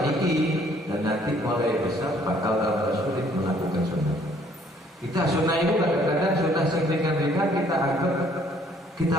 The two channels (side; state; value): both; normal; correlation 0.61